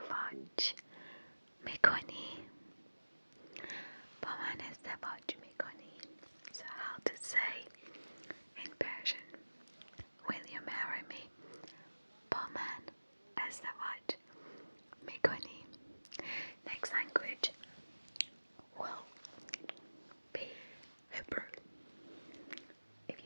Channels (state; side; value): inverted; both; correlation -1.00